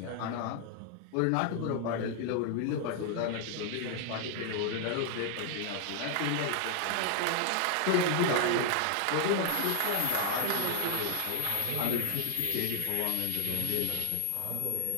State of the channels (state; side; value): different; both; correlation 0.00